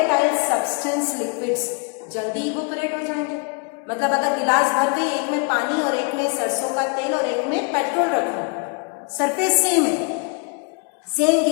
सब्सटेंस लिक्विड्स जल्दी इवेपोरेट हो जाएंगे। मतलब अगर गिलास भर गई, एक में पानी और एक में सरसों का तेल और एक में पेट्रोल रखो, सरफेस सेम है, सेम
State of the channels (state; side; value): quieter; right; 32.7 dB